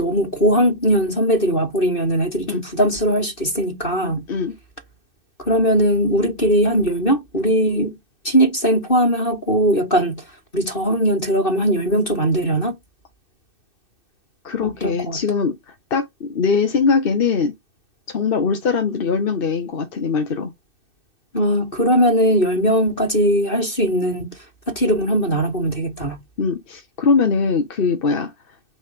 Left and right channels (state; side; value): late; right; 2.6 ms